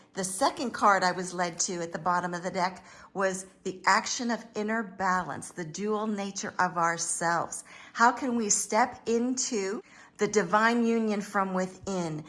the second card I was led to at the bottom of the deck was the action of inner balance, the dual nature of ourselves. How can we step into the divine union from within,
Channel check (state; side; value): identical; both; correlation 1.00